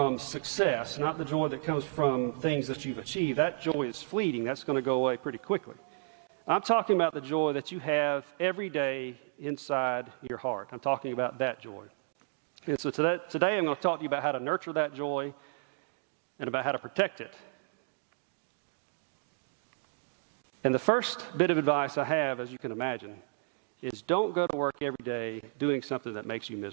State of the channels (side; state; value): left; silent; digital silence